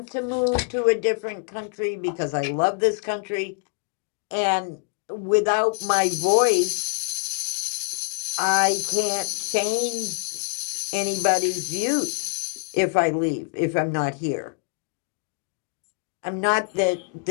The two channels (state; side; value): quieter; right; 37.1 dB